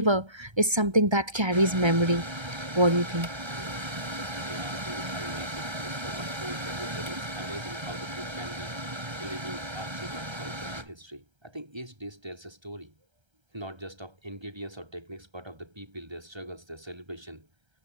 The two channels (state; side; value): late; left; 1.3 ms